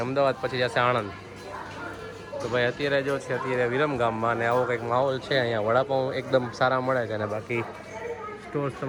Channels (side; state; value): both; identical; correlation 1.00